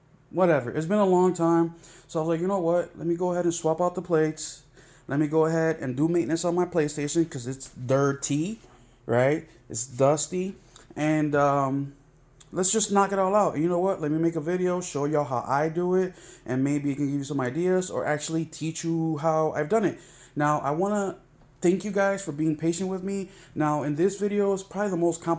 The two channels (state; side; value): identical; both; correlation 1.00